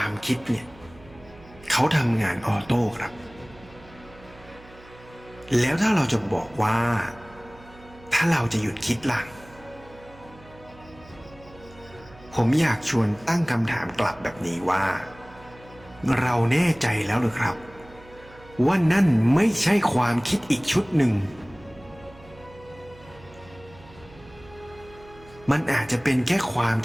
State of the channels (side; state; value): right; noise; hum, 22 dB below the sound